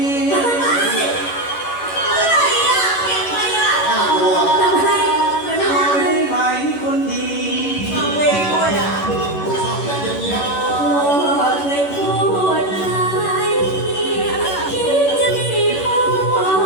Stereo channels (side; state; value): right; late; 11 ms